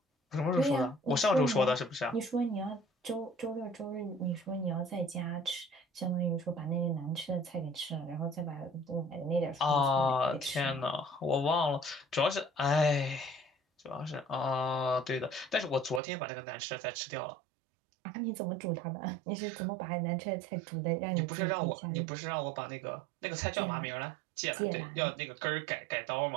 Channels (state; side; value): drops out; left; at 16.0 s